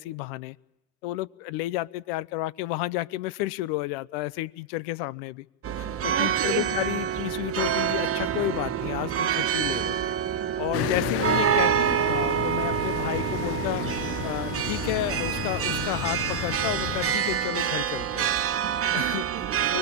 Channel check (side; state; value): both; normal; correlation -0.05